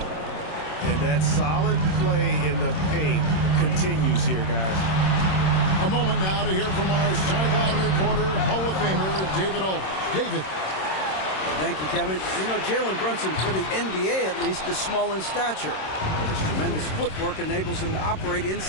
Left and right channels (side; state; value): right; late; 26 ms